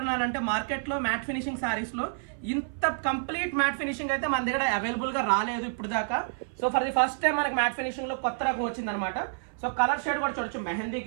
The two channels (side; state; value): left; silent; 57 dB below the other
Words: మార్కెట్లో మ్యాట్ ఫినిషింగ్ శారీస్లో ఇంత కంప్లీట్ మ్యాట్ ఫినిషింగ్ అయితే మన దగ్గర అవైలబుల్గా రాలేదు ఇప్పుడు దాకా. So for the first time మనకి మ్యాట్ ఫినిషింగ్లో కొత్త రకం వచ్చిందనమాట. సో కలర్ షేడ్ కూడా చూడొచ్చు, mehndi